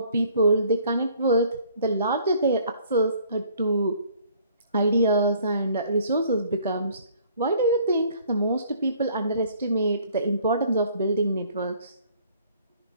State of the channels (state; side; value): inverted; both; correlation -0.58